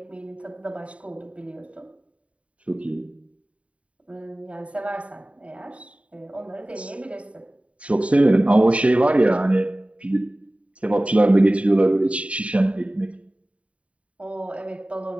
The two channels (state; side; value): late; left; 0.064 ms